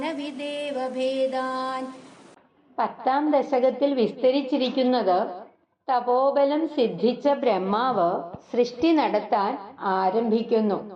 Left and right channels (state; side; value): identical; both; correlation 1.00